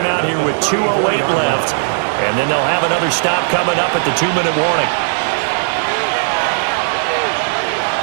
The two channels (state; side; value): silent; left; digital silence